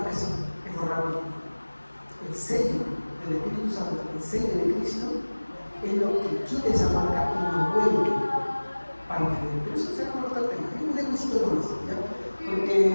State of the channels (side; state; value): both; inverted; correlation -1.00